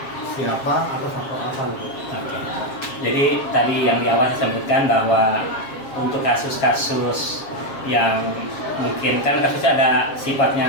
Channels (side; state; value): right; late; 7.4 ms